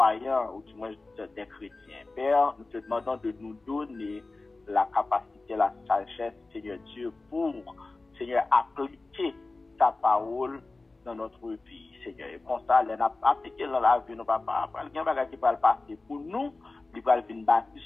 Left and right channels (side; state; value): right; quieter; 3.4 dB